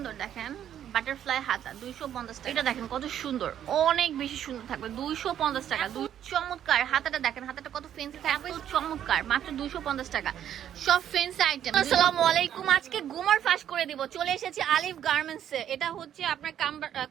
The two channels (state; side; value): quieter; left; 10.2 dB